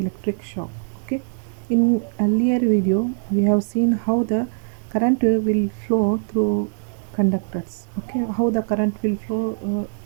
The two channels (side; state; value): left; silent; digital silence